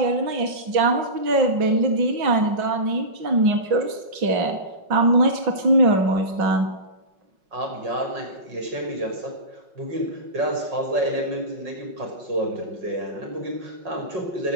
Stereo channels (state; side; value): late; left; 5.4 ms